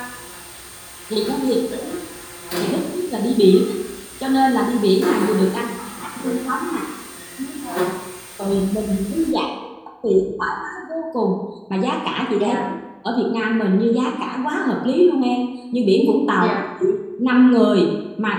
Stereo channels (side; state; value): both; identical; correlation 1.00